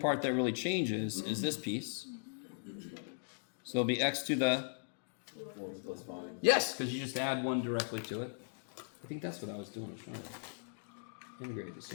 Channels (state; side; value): silent; right; digital silence